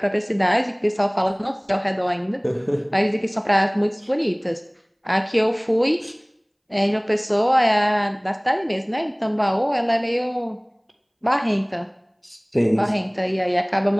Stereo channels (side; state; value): both; identical; correlation 1.00